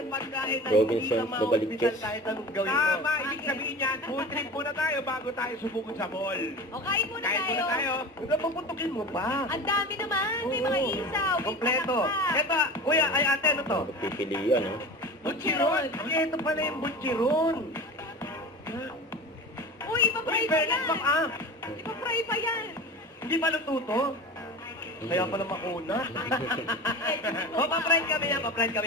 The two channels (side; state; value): both; normal; correlation 0.33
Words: pagkain na Robinsons hindi na Novaliches. kahit anong gawin mo. Tama, ibig sabihin yan, food trip muna tayo bago tayo subukan sa mall. O, kain muna Kain tayo. muna tayo. Huwag pupuntukin mo pa. Ang dami naman. May mga Oo. isaw. May Kompleto. palakpak. Ito, kuya, ay ate, ano to? pagpipilian, no? Butchiron. Ay, ito pala yung butchiron. Uy, ipapry Uy, pa fairness yan. bang ah? Ipapry pa yan. Hindi pa luto to? Kaya pala makuna. O, pa-friend kami yan. Pa-friend kami